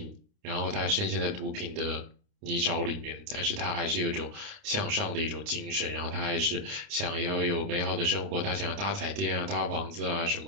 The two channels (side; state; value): left; late; 29 ms